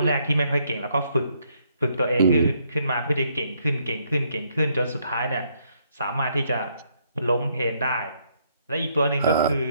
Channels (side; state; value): both; inverted; correlation -0.72